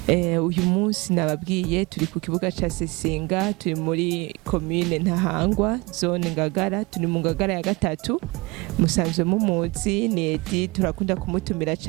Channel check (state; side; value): quieter; left; 25.2 dB